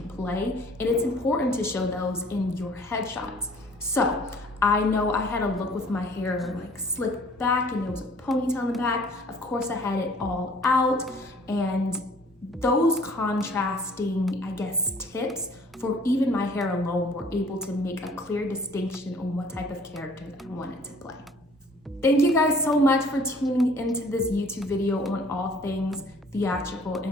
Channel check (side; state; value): both; normal; correlation 0.54